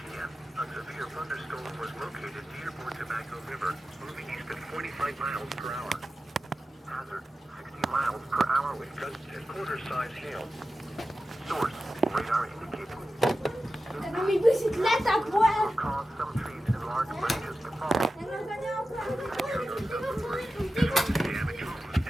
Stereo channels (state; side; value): normal; both; correlation 0.93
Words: a severe thunderstorm was located near Port Tobacco River, moving east at 45 miles per hour. Hazard, 60 miles per hour with gusts and quarter-size hail. Source, radar indicated. Hebben we bicicleta, boy? Will cause some trees and large branches to fall. Damage homes